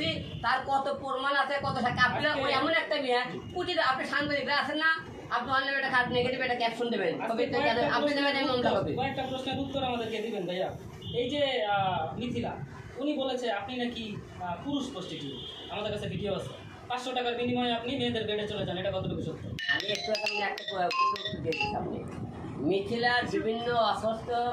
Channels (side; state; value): both; identical; correlation 1.00